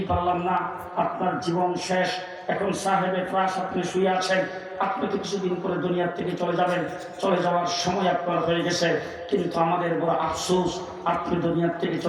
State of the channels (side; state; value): both; identical; correlation 1.00